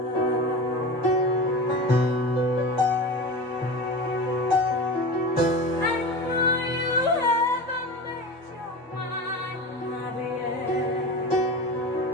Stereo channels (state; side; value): normal; both; correlation 0.29